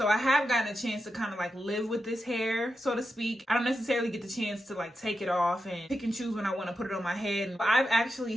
I have gotten a chance to kind of like live with this hair, so to speak. I don't necessarily get the chance to like take it off and pick and choose when I want to put it on my head. But I've actually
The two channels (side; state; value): both; normal; correlation 0.88